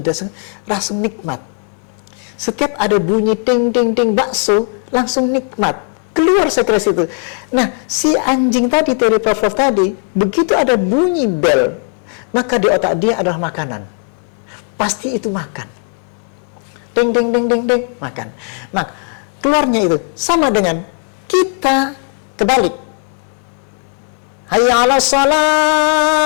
rasa nikmat. Setiap ada bunyi ting ting ting bakso, langsung nikmat, keluar sekresi itu. Nah, si anjing tadi, teori Pavlov tadi, begitu ada bunyi bel, maka di otak dia adalah makanan. Pasti itu makan. Ting ting ting ting ting, makan. Nah, keluarnya itu sama dengan kita kebalik. Hayya 'alas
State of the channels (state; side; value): quieter; right; 39.6 dB